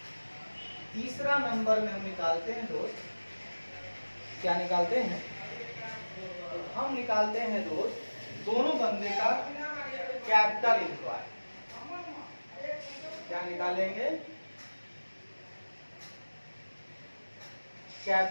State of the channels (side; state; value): both; inverted; correlation -1.00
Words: तीसरा नंबर में हम निकालते हैं दोस्त, क्या निकालते हैं, तो हम निकालते हैं दोस्त दोनों बंदे का कैपिटल एम्प्लॉयड। क्या निकालेंगे,